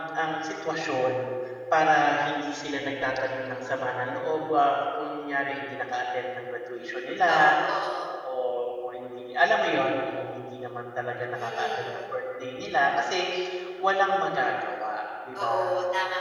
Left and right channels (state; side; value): identical; both; correlation 1.00